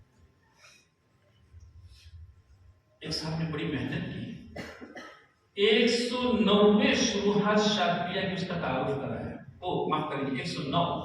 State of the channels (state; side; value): identical; both; correlation 1.00